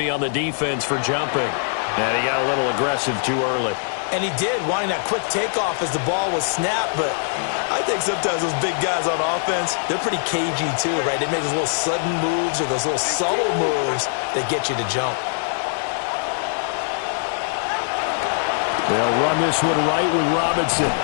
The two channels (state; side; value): silent; right; 64 dB below the other